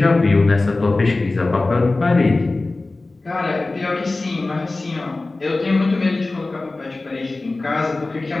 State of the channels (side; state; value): right; quieter; 3.2 dB